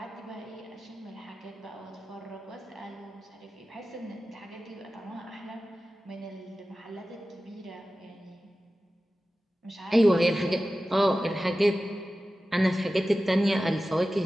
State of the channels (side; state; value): both; normal; correlation 0.95